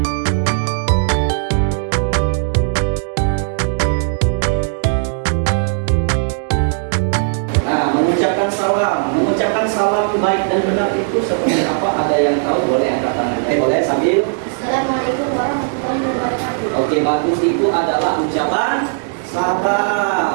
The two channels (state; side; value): silent; left; digital silence